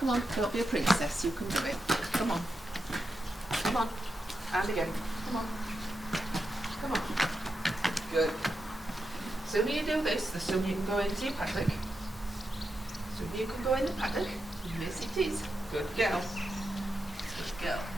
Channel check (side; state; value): both; normal; correlation 0.87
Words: on, don't be a princess, you can do it. Come on. Come on. And again. Come on. Come on. Good. The sooner you do this, the sooner you can go into your paddock. The sooner you can go in the paddock. Yes, it is. Good girl. Good girl.